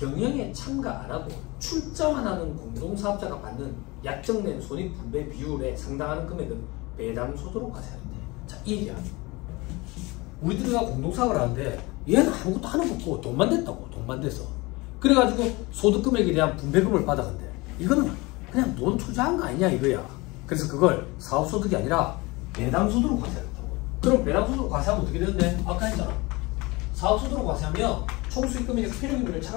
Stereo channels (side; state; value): right; quieter; 23.7 dB